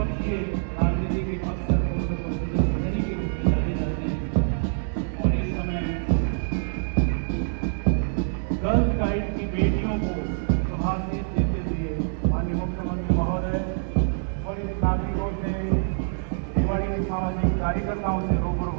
राजनीति के अक्सर पोषक और सदस्य प्रहरी के रूप में जाने जाते हैं और इस समय गर्ल्स गाइड की बेटियों को शुभाशीष देते हुए माननीय मुख्यमंत्री महोदय वरिष्ठ नागरिकों से, रेवाड़ी के सामाजिक कार्यकर्ताओं से रूबरू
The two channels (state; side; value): silent; left; digital silence